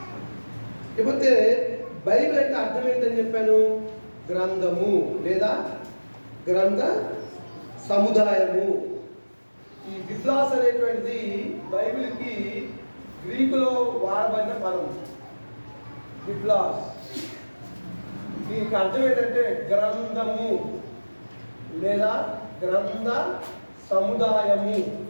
ఇకపోతే బైబిల్ అంటే అర్థం ఏంటని చెప్పాను? గ్రంథము లేదా గ్రంథ సముదాయము. ఈ బిబ్లాస్ అనేటువంటిది బైబిల్కి గ్రీకులో వాడబడిన పదం. బిబ్లాస్ దీనికి అర్థం ఏంటంటే గ్రంథము లేదా గ్రంథ సముదాయము.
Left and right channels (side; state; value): both; inverted; correlation -1.00